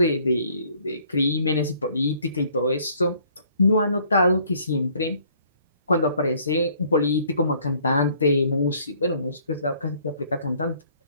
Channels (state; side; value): inverted; both; correlation -0.61